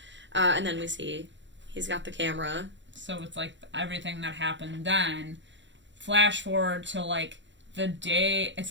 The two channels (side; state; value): left; late; 0.53 ms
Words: And then we see he's got the camera. So it's, like, everything that happened then. Flash forward to, like, the day... It's,